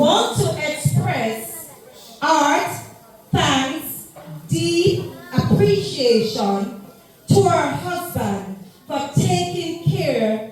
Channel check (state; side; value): identical; both; correlation 1.00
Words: to express our thanks, deep appreciation to her husband for taking care